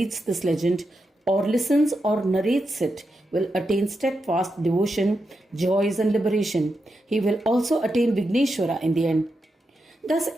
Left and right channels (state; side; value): normal; both; correlation 0.86